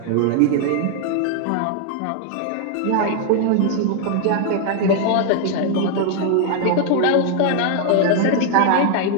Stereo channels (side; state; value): both; different; correlation 0.00